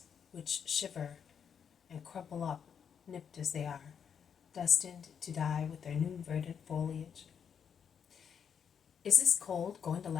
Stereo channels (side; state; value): right; quieter; 7.4 dB